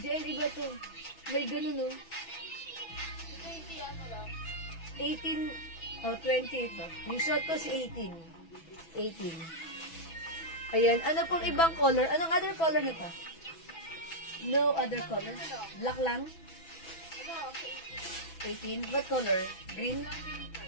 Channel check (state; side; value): late; right; 6.1 ms